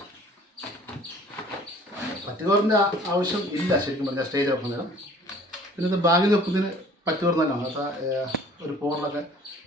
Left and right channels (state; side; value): normal; both; correlation 0.51